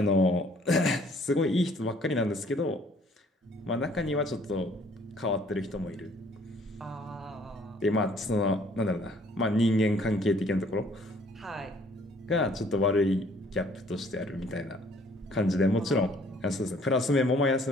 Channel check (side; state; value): both; normal; correlation 0.59